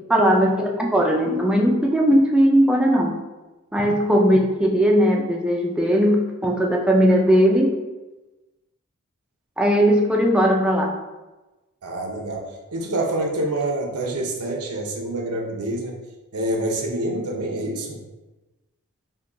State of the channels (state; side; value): normal; both; correlation 0.67